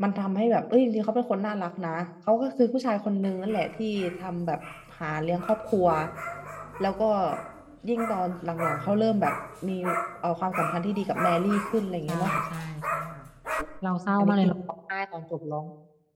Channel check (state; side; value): identical; both; correlation 1.00